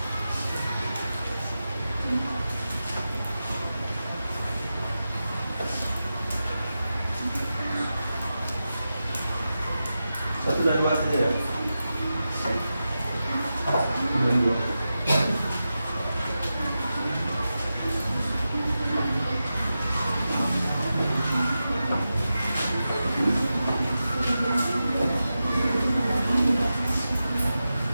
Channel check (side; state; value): both; inverted; correlation -0.92